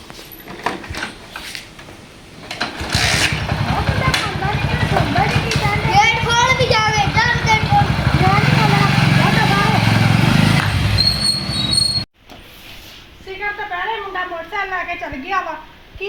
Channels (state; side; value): identical; both; correlation 1.00